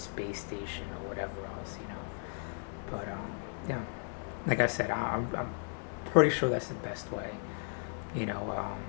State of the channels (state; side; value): silent; right; 54 dB below the other